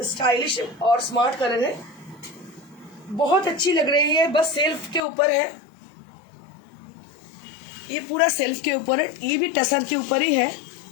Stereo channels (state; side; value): drops out; right; at 5.0 s